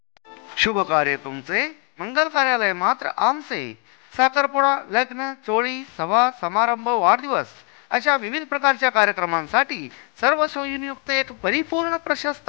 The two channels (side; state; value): right; quieter; 37.3 dB